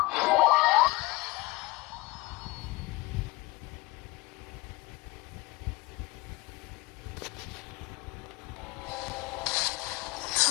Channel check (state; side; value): quieter; right; 22.3 dB